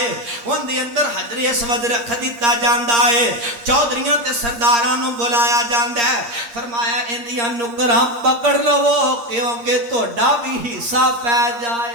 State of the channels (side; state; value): left; late; 8.5 ms